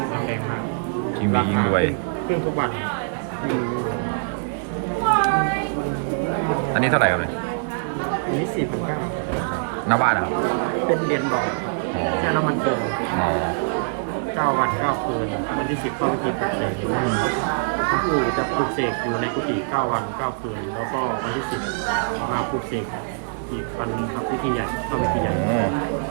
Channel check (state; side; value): silent; left; digital silence